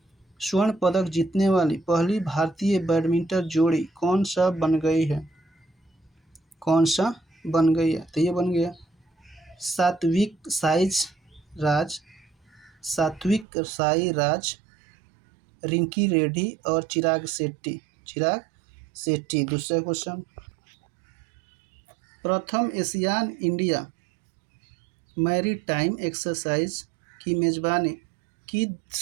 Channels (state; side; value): drops out; left; at 13.5 s